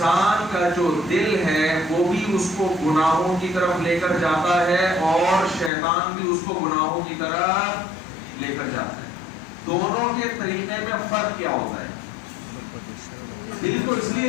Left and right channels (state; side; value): drops out; right; at 5.7 s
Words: کا جو دل ہے وہ بھی اس کو گناہوں کی طرف لے کر جاتا ہے اور شیطان بھی اس کو گناہوں کی طرف لے کر جاتا ہے۔ دونوں کے طریقے میں فرق کیا ہوتا ہے؟ دل کو اس لیے